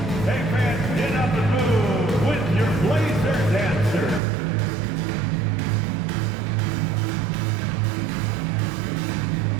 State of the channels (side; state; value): left; drops out; at 4.2 s